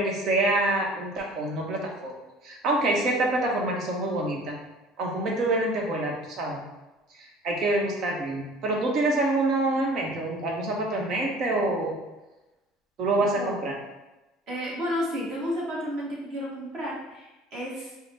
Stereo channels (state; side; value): normal; both; correlation 0.47